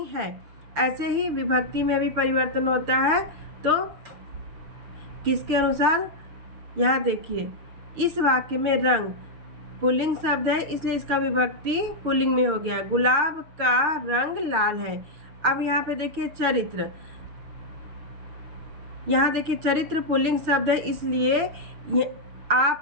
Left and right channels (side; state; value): left; late; 6.5 ms